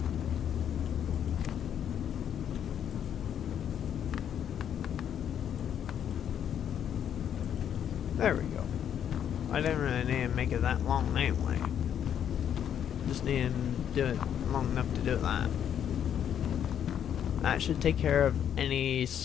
There we go. I didn't really need to make it that long anyway. Just need to do it long enough to do that. That should take care of any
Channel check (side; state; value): right; quieter; 9.2 dB